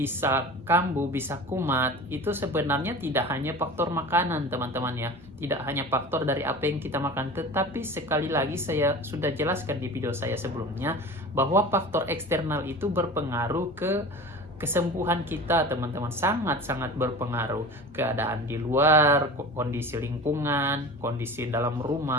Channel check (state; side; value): normal; both; correlation 0.35